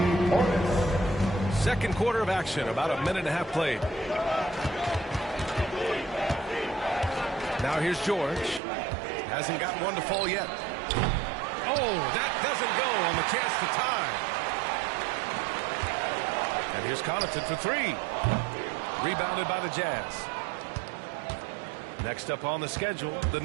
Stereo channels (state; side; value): drops out; left; at 8.6 s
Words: Portis. Second quarter of action, about a minute and a half played. Now here's George. Hasn't gotten one to fall yet. Oh, that doesn't go on the chance to tie. And here's Connaughton for three. Rebounded by the Jazz. Next up on the schedule, the